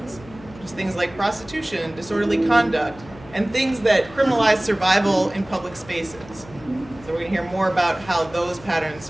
just things like prostitution, disorderly conduct, and things that criminalize survival in public spaces. So we're going to hear more about how those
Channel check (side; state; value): left; noise; hum, 20 dB below the sound